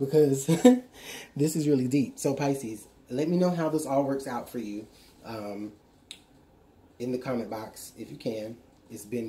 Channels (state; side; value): identical; both; correlation 1.00